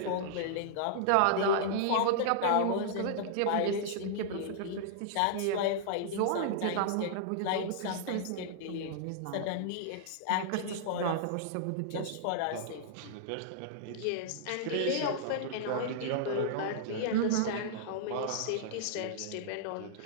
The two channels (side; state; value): both; different; correlation -0.02